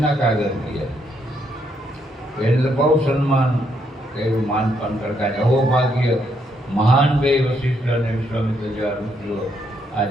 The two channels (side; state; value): both; normal; correlation 0.75